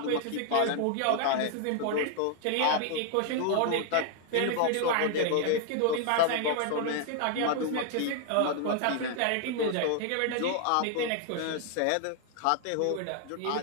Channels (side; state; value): both; different; correlation 0.00